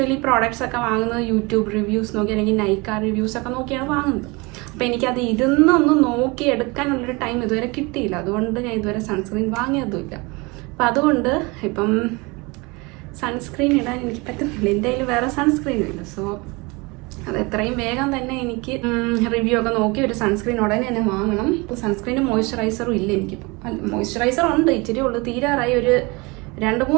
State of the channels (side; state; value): left; quieter; 26.3 dB